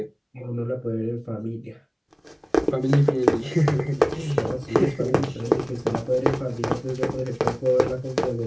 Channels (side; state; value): both; identical; correlation 1.00